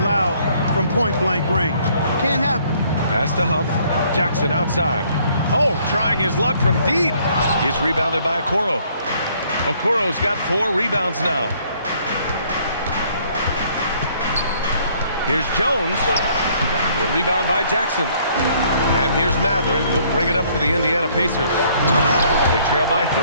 from point-blank range. Can't happen. Pass to Huff. Jackson outside. Oh, trying his luck from deep. He's rebounded by Okoro. Okoro's got 4 rebounds now. Here's Jones. The rebound by Jackson. And here's Matherin. He'll bring it up for the Indiana Pacers. They trail by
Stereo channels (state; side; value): inverted; both; correlation -0.63